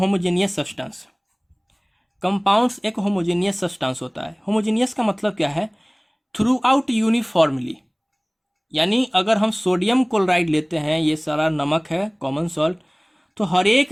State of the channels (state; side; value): identical; both; correlation 1.00